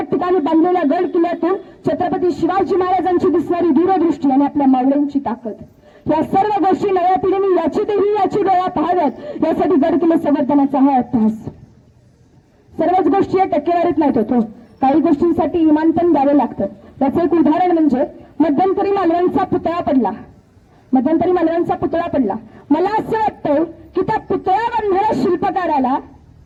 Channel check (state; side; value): identical; both; correlation 1.00